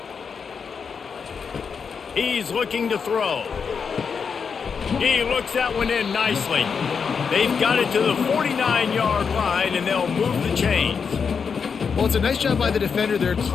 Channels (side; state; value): right; quieter; 6.1 dB